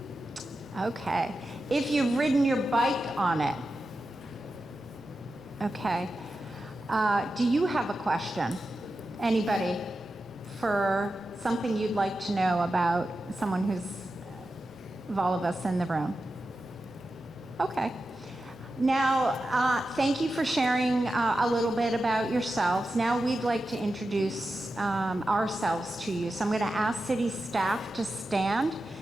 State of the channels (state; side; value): normal; both; correlation 0.91